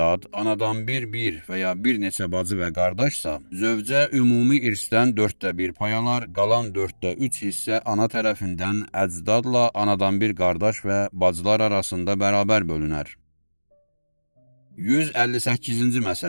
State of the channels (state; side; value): inverted; both; correlation -1.00